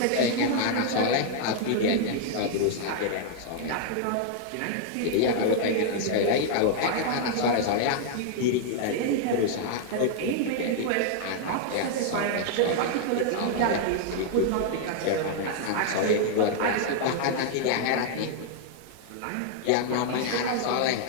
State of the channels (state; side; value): different; both; correlation -0.01